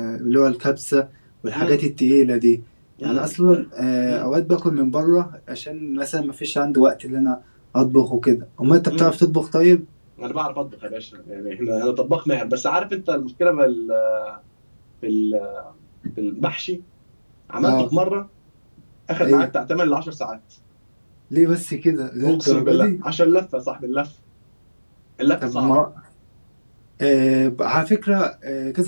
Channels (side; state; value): both; inverted; correlation -1.00